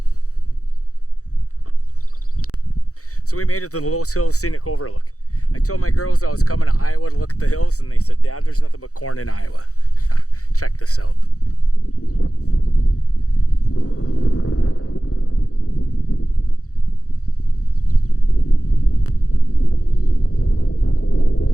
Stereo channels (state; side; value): late; right; 0.65 ms